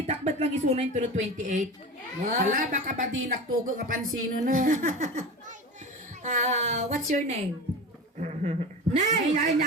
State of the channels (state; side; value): normal; both; correlation 0.29